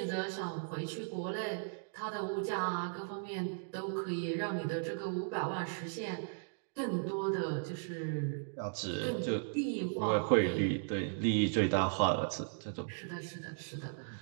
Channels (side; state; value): left; silent; digital silence